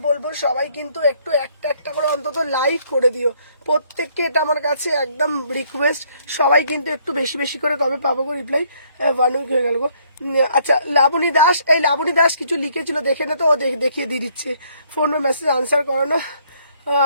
বলবো সবাই কিন্তু একটু একটা একটা করে অন্তত লাইক করে দিও প্রত্যেককে, এটা আমার কাছে একদম রিকোয়েস্ট। সবাই কিন্তু একটু বেশি বেশি করে কবে পাবো গো রিপ্লাই, 1 উইক হয়ে গেল গো। আচ্ছা লাবণী দাস, এই লাবণী দাস কিছু লিখেছিল দেখে না তো, ও দেখিয়ে দিয়ে দিচ্ছে, ফোন মেসেজ আনসার করো না।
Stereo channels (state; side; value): inverted; both; correlation -0.66